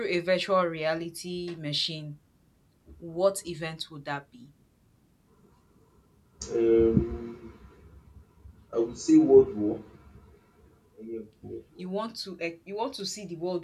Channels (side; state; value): both; identical; correlation 1.00